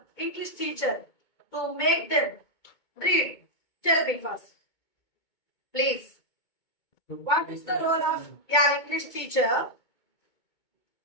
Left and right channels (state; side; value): late; right; 2.2 ms